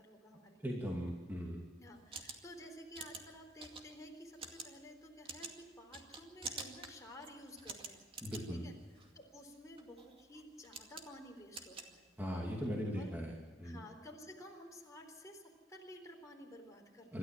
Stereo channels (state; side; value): normal; both; correlation 0.70